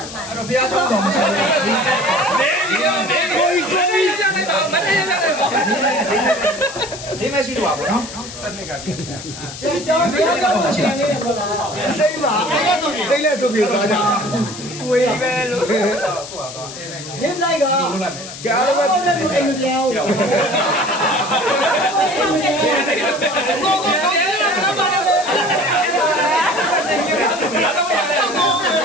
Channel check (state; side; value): noise; left; hiss, 12 dB below the sound